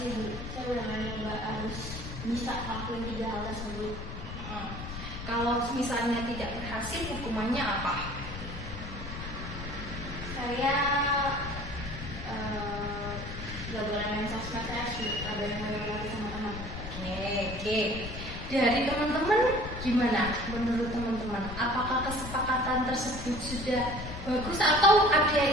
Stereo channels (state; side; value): noise; left; rumble, 9 dB below the sound